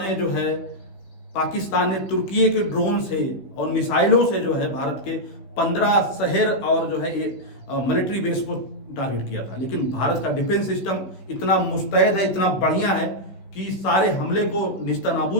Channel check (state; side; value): late; right; 15 ms